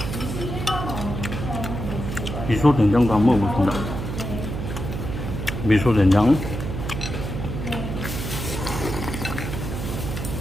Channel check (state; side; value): noise; right; hum, 5 dB below the sound